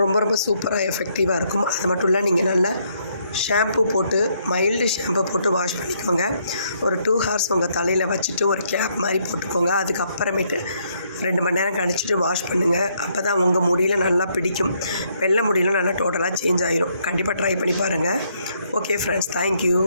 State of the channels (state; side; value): inverted; both; correlation -0.72